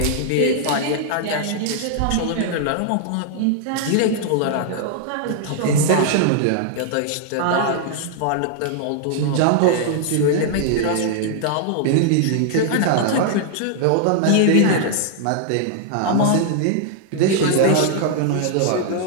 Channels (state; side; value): different; both; correlation 0.00